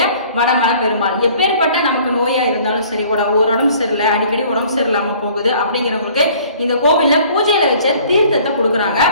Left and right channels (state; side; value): inverted; both; correlation -0.53